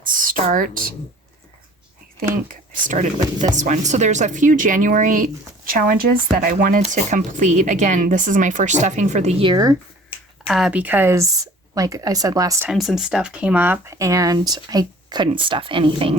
start. I think I started with this one. So there's a few January challenges that I wanted to complete. Again, this is my first stuffing for the year because, like I said last time, some stuff came up and I couldn't stuff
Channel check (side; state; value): both; normal; correlation 0.48